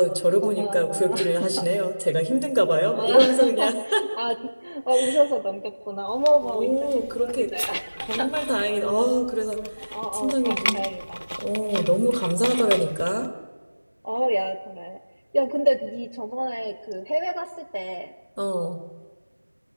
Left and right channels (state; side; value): inverted; both; correlation -1.00